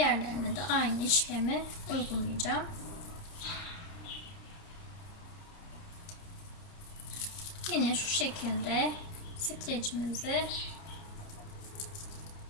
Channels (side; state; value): right; late; 29 ms